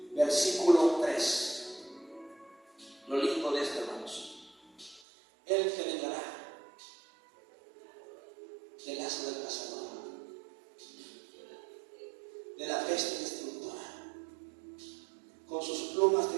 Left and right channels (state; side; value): drops out; left; at 5.0 s